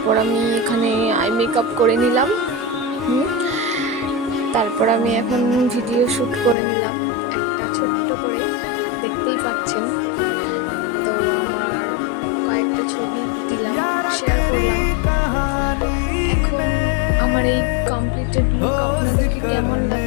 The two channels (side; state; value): right; drops out; at 6.6 s